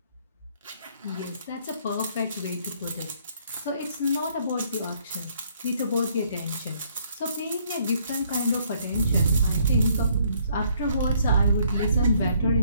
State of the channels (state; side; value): inverted; both; correlation -0.65